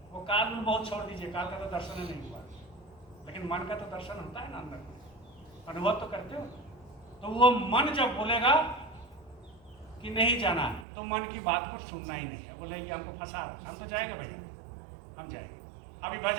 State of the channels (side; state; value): left; drops out; at 10.9 s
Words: वो काल में बहुत छोड़ दीजिए, काल का तो दर्शन नहीं हुआ, लेकिन मन का तो दर्शन होता है ना, अंदर में अनुभव तो करते हो। तो वो मन जब बोलेगा कि नहीं जाना, तो मन की बात को सुनना ही नहीं है। बोले ये हमको फंसा रहा है, हम तो जाएंगे भैया, हम जाएंगे। अभी